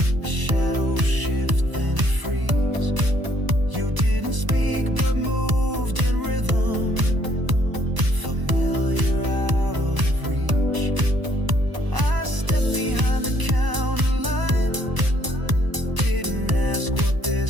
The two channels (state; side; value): late; left; 1.0 ms